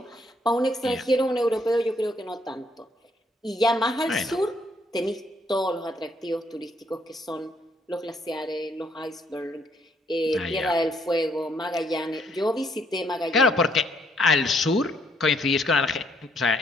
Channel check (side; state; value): both; normal; correlation 0.69